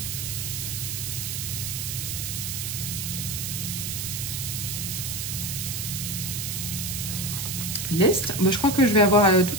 L'est, je crois que je vais avoir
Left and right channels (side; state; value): right; noise; hiss, 3 dB below the sound